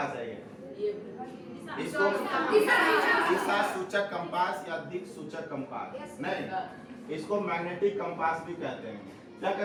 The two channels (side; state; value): both; identical; correlation 1.00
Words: है ये? इसको दिशा सूचक कंपास या दिक् सूचक कंपास नहीं, इसको मैग्नेटिक कंपास भी कहते हैं। क्या